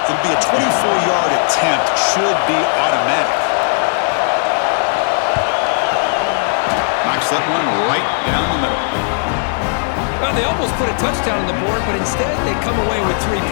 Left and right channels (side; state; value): right; silent; digital silence